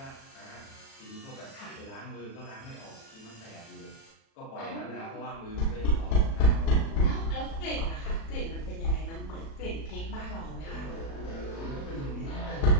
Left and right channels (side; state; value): right; late; 36 ms